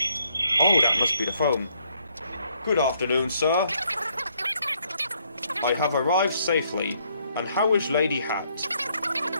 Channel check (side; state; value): both; inverted; correlation -0.70